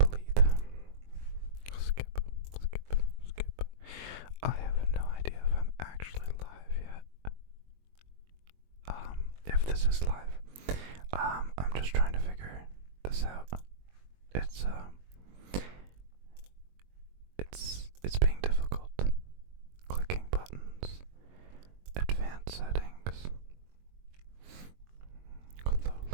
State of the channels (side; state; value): left; late; 22 ms